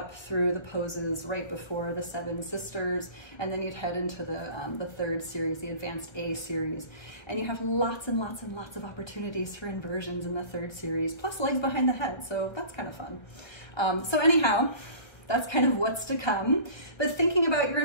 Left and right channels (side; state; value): right; late; 1.5 ms